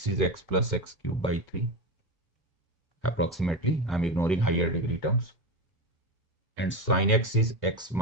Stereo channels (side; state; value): both; normal; correlation 0.19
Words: is x plus x cubed by 3. Approximately, I'm ignoring higher degree terms. And sin x is x